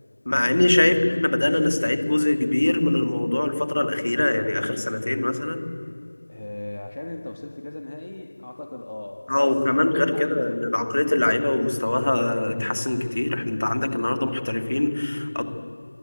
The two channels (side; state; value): both; inverted; correlation -1.00